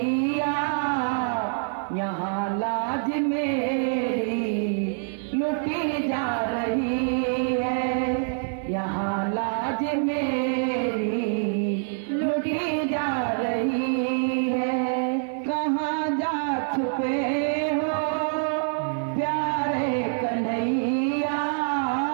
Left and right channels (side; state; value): left; silent; 56 dB below the other